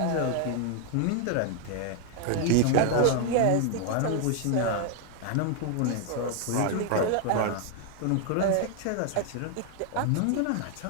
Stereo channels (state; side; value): different; both; correlation 0.00